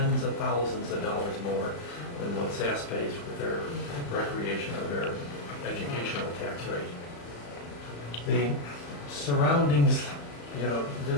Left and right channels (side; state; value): right; late; 35 ms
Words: of thousands of dollars more than what SASS pays with their recreation or their educational tax rate. The surroundings,